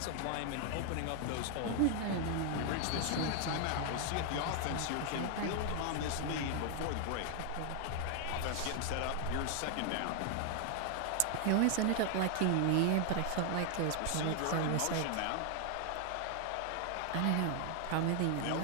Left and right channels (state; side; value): different; both; correlation 0.00